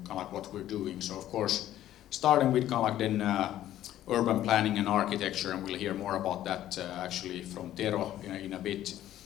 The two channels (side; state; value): right; quieter; 12.8 dB